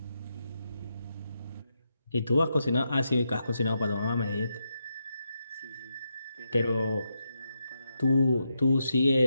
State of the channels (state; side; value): inverted; both; correlation -0.84